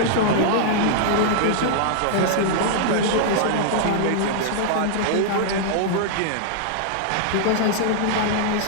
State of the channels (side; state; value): both; different; correlation -0.01